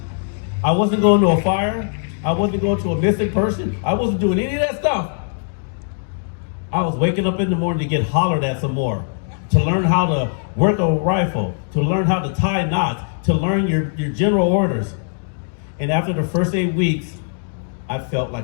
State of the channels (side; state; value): right; silent; digital silence